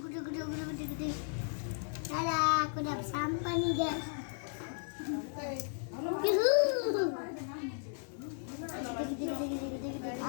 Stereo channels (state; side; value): silent; right; 54 dB below the other